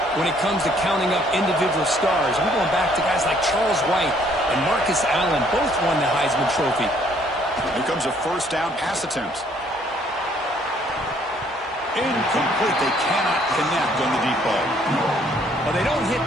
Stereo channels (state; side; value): normal; both; correlation 0.64